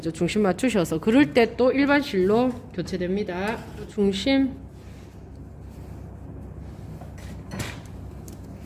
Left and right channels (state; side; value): identical; both; correlation 1.00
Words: 중심 맞추셔서. 그럴 때 또 일반 실로 교체됩니다. 중심